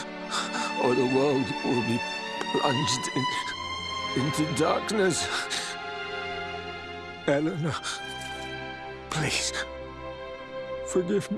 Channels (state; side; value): identical; both; correlation 1.00